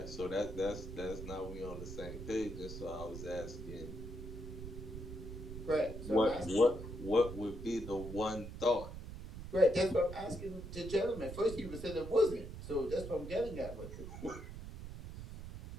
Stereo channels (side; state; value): right; noise; rumble, 9 dB below the sound